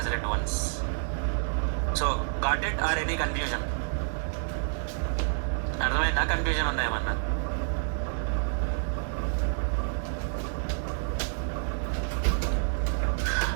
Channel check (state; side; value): silent; left; digital silence